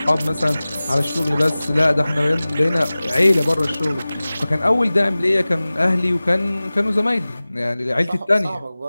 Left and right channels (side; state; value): both; inverted; correlation -0.98